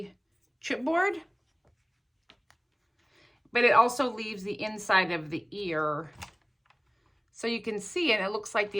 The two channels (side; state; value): both; identical; correlation 1.00